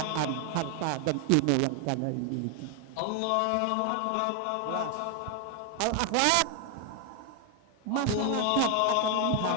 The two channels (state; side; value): different; both; correlation 0.00